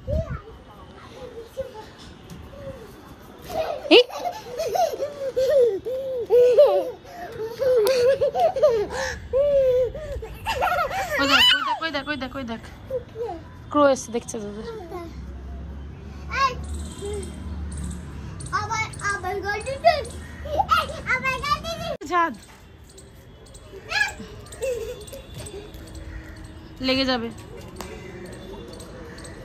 ক্রো এসে দেখছে তোদের। ছাদ লেগে যাবে।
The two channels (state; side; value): identical; both; correlation 1.00